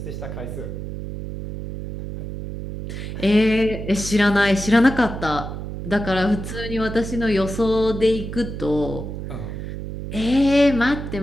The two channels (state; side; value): noise; right; hum, 7 dB below the sound